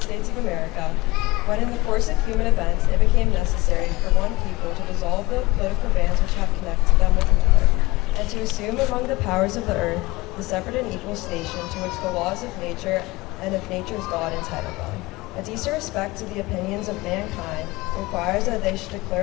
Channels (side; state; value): right; quieter; 20.9 dB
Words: States of America, when in the course of human events it became necessary for one people to dissolve the political bands which have connected them with another, and to assume among the powers of the earth the separate and equal station to which the laws of nature and of nature's God entitle them. A decent respect to the opinions of mankind requires that they should